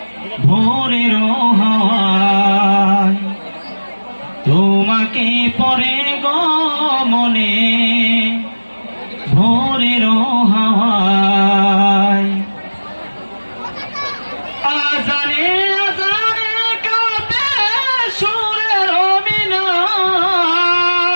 ভোরের হাওয়ায়। তোমাকে পরে গো মনে ভোরের হাওয়ায়। আজানে আজানে কাঁপে সুরের মিনার,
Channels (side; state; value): both; inverted; correlation -1.00